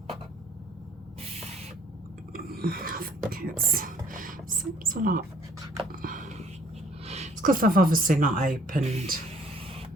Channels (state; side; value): normal; both; correlation 0.59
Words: think it seems a lot. It's because I've obviously not opened